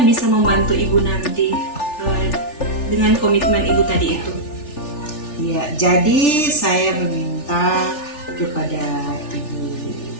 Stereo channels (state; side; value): late; right; 3.4 ms